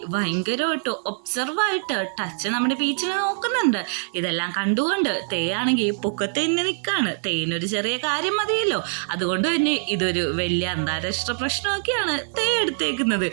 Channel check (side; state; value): left; silent; digital silence